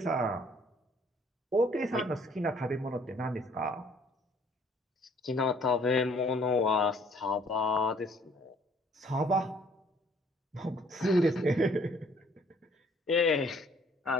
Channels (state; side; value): normal; both; correlation 0.60